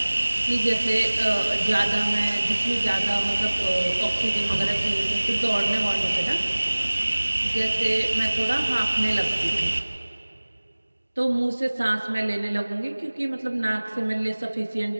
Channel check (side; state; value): both; inverted; correlation -1.00